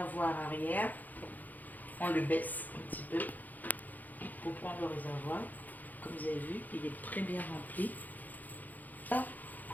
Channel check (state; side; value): late; right; 0.083 ms